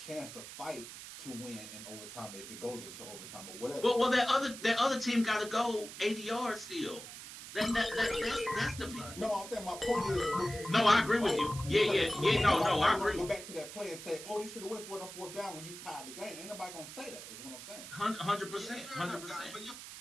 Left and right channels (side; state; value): right; noise; hiss, 12 dB below the sound